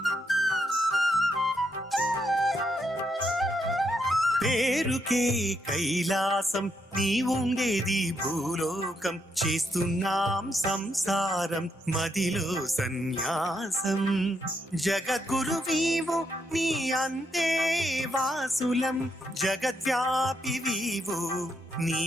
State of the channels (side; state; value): both; normal; correlation 0.79